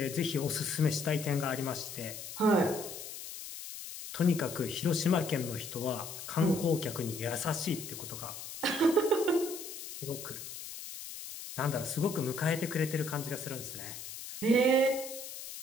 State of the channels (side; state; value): left; noise; hiss, 10 dB below the sound